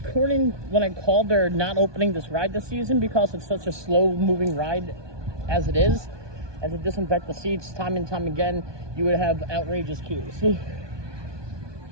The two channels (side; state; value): left; late; 1.2 ms